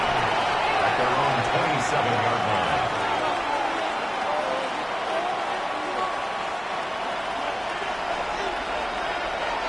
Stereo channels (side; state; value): both; identical; correlation 1.00